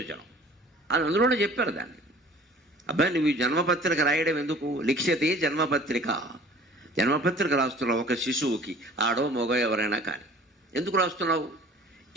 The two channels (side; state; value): both; normal; correlation 0.48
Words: అది అందులోనే చెప్పారు దాన్ని. అబ్బాయి నువ్వు ఈ జన్మపత్రిక రాయడం ఎందుకు? లిఖ్యతే జన్మపత్రిక, జన్మపత్రిక రాస్తున్నావు ఒక శిశువుకి, ఆడో మగో ఎవరైనా కానీ. ఎందుకు రాస్తున్నావు?